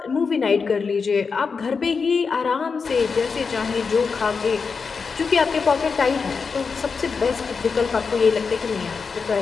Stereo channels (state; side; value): quieter; right; 5.2 dB